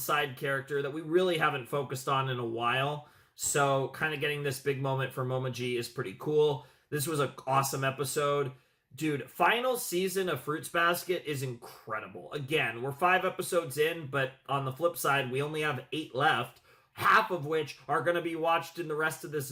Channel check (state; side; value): identical; both; correlation 1.00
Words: character that we really haven't focused on in a while. So kind of getting this big moment for Momo G is pretty cool. This was an awesome episode. Dude, final season of Fruits Basket is incredible. Again, we're 5 episodes in, but on the flip side, we only have 8 left, half of which are going to be watched in the rest of this